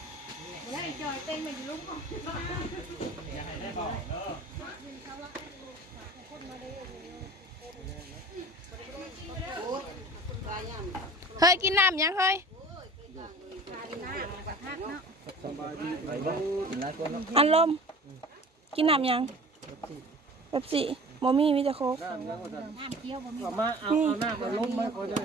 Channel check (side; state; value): both; normal; correlation 0.42